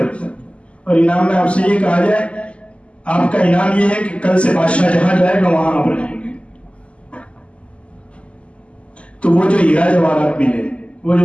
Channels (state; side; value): late; right; 0.058 ms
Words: اور انعام میں آپ سے یہ کہا جائے, آپ کا انعام یہ ہے کہ کل سے بادشاہ جہاں جائے گا وہاں آپ رہیں گے. تو وہ جو ہیرا جواہرات ملے, وہ جو